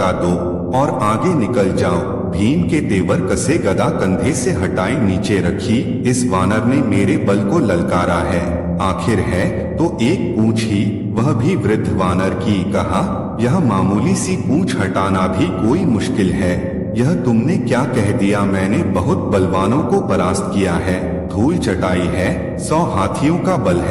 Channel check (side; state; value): both; identical; correlation 1.00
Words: दो और आगे निकल जाओ। भीम के तेवर कसे गदा कंधे से हटाई नीचे रखी। इस वानर ने मेरे बल को ललकारा है, आखिर है तो एक पूंछ ही, वह भी वृद्ध वानर की। कहा, यह मामूली सी पूंछ हटाना भी कोई मुश्किल है। यह तुमने क्या कह दिया? मैंने बहुत बलवानों को परास्त किया है, धूल चटाई है, 100 हाथियों का बल